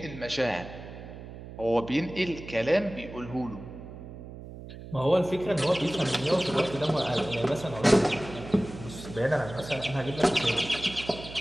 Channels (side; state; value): right; noise; hum, 13 dB below the sound